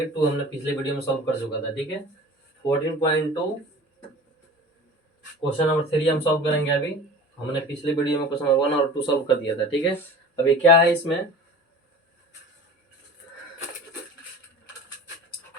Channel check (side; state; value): both; normal; correlation 0.39